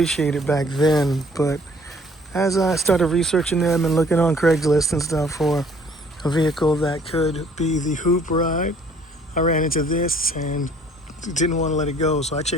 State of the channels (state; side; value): normal; both; correlation 0.57